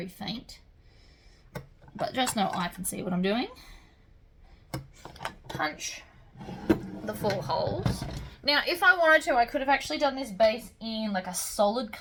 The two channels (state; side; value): identical; both; correlation 1.00